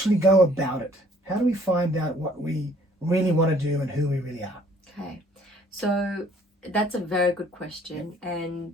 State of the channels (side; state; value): both; normal; correlation 0.60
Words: go about it? How do we find out what we really want to do and who we really are? Okay, so that's a very good question.